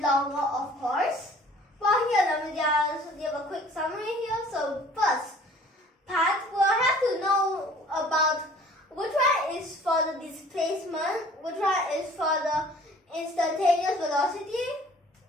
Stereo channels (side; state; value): both; normal; correlation 0.51